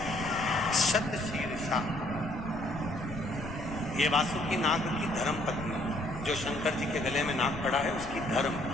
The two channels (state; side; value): noise; left; rumble, 11 dB below the sound